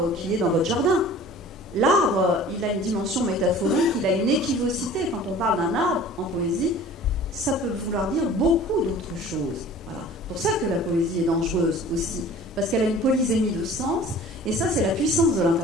qui est dans votre jardin. L'arbre, il a une dimension métaphorique, il a une équivocité. Quand on parle d'un arbre en poésie, ça peut vouloir dire beaucoup d'autres choses. Voilà. C'est pour ça que la poésie est dangereuse aussi, parce qu'elle a une polysémie de sens, et ça c'est la puissance de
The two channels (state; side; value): normal; both; correlation 0.45